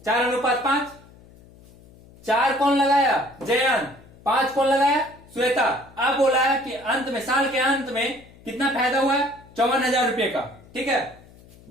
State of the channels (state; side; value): noise; left; hum, 24 dB below the sound